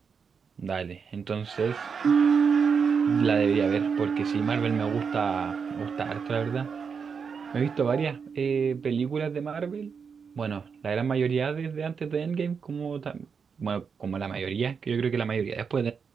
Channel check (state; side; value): quieter; left; 6.0 dB